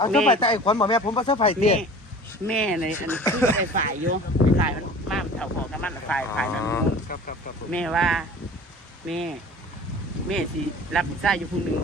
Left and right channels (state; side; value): normal; both; correlation 0.42